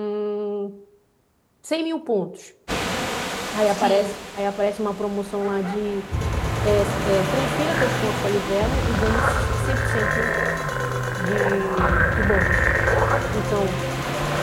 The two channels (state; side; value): identical; both; correlation 1.00